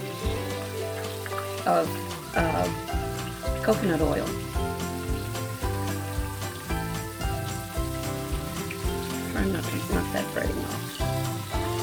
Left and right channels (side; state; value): both; identical; correlation 1.00